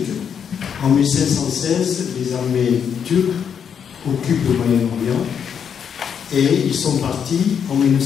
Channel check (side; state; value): right; quieter; 7.6 dB